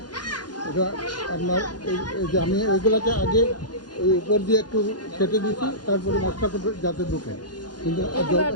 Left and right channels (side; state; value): right; late; 0.70 ms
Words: এটা আপনার এই যে আমি ওইগুলোকে আগে ওই উপর দিয়ে একটু কেটে দিয়েছি, তারপরে মশলাটা যাতে ঢুকে। কিন্তু